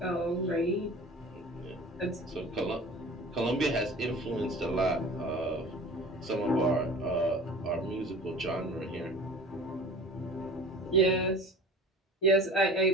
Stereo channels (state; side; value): normal; both; correlation 0.41